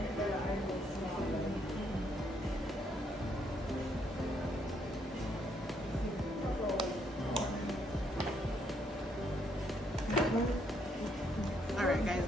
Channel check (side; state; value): both; normal; correlation 0.72